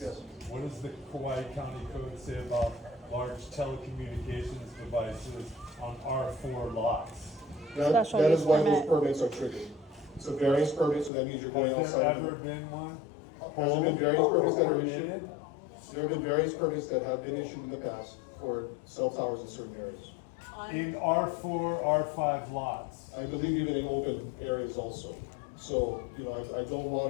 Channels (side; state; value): right; drops out; at 11.1 s